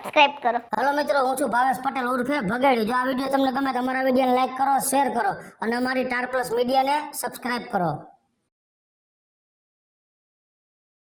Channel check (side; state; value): both; identical; correlation 1.00